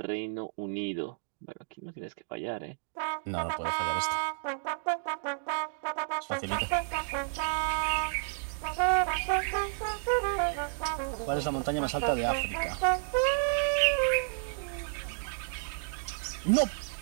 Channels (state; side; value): silent; left; digital silence